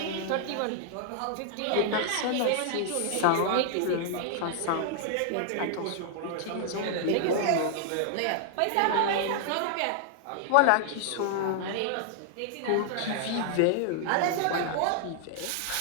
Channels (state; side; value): different; both; correlation -0.01